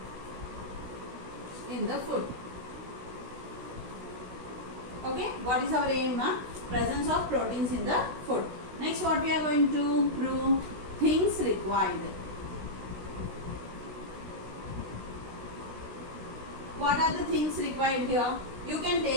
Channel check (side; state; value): left; late; 16 ms